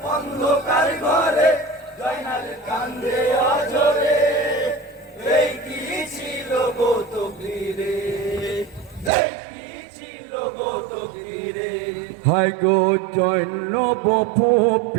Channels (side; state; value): left; drops out; at 9.1 s